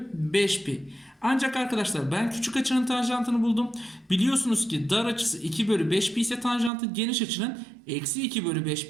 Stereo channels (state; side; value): drops out; left; at 6.7 s